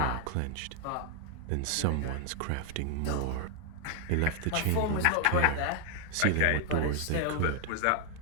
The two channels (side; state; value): both; different; correlation 0.00